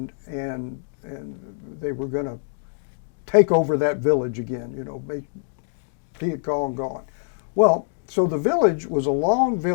they were going to take over that village again, make Viet Cong gone. Well, so the village was a long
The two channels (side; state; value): right; silent; digital silence